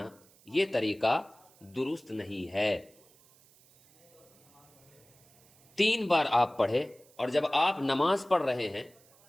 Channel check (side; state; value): right; noise; hiss, 28 dB below the sound